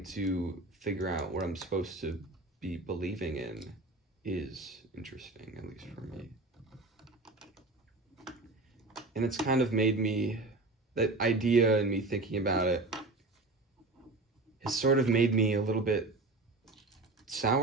to figure out what I'm supposed to be believing in is interesting, at least for me. And it's kind of made me, that idea and me thinking about it has sort of made me a little bit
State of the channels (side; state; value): left; quieter; 3.1 dB